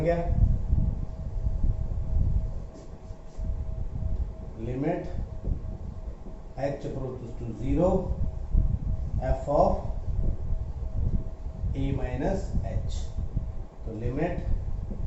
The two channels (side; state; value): both; identical; correlation 1.00